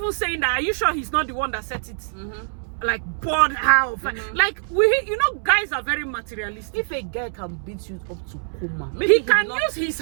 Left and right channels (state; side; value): silent; left; 61 dB below the other